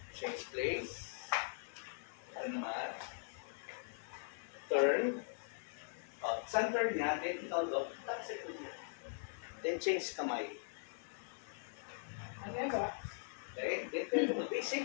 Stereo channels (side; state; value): right; silent; 50 dB below the other